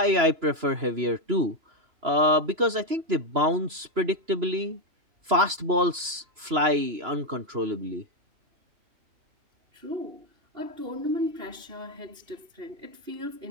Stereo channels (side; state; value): left; late; 2.9 ms